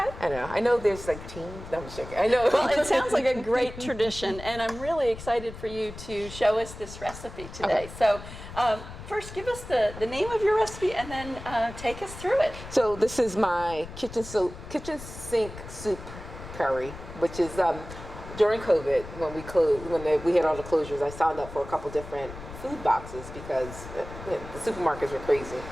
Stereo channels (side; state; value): left; noise; rumble, 13 dB below the sound